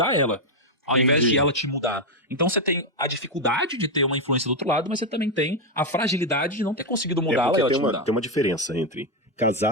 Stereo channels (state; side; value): normal; both; correlation 0.04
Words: ela, ao invés de ela te mudar. Então você tem a dificuldade de ter uma influência do outro lado, mas você também tem a fragilidade de não ter conseguido mudá-la e ela te mudar. Tem uma diferença entre